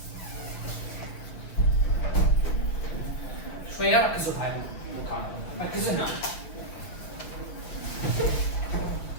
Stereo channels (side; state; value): right; late; 7.2 ms